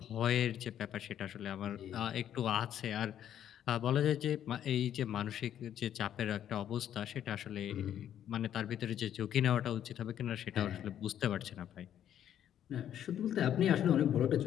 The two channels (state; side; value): quieter; right; 10.4 dB